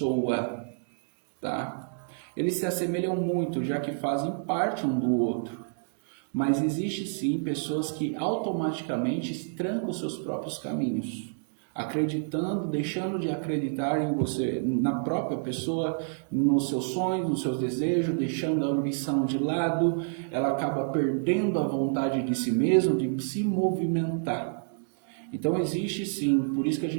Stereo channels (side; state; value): left; silent; digital silence